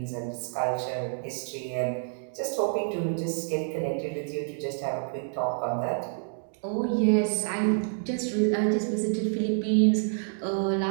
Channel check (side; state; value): left; silent; digital silence